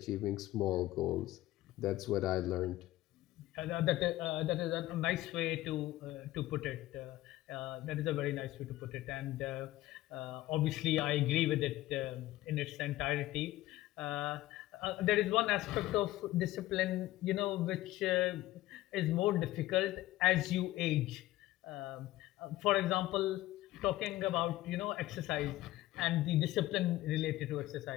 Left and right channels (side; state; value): right; quieter; 16.2 dB